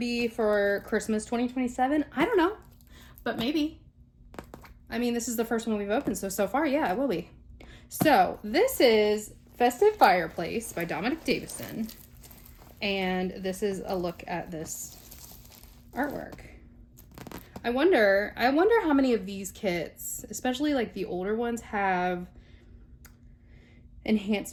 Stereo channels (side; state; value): both; identical; correlation 1.00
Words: for Christmas 2027? I don't know, but maybe. I mean, this is the first one we've opened, so far, yeah, it will be. So this is Festive Fireplace by Dominic Davison. And this is a look at this artwork. I wonder how many of these kits, especially like the older ones, have